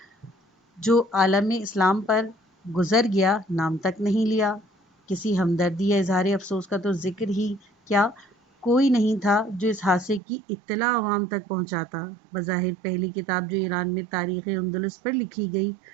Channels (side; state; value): left; drops out; at 10.2 s